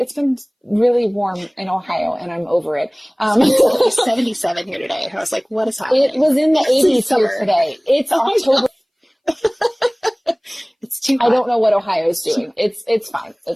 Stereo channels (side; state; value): both; identical; correlation 1.00